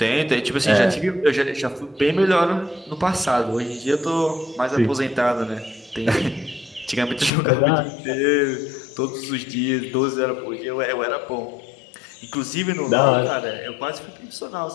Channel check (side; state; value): right; drops out; at 7.3 s